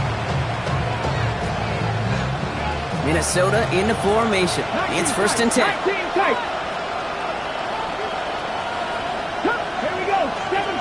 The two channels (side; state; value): both; identical; correlation 1.00